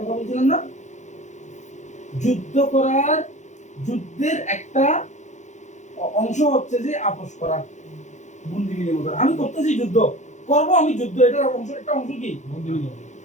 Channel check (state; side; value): late; right; 0.35 ms